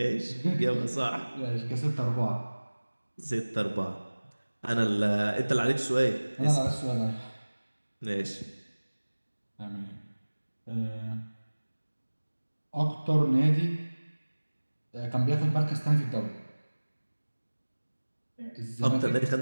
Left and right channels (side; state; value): both; inverted; correlation -1.00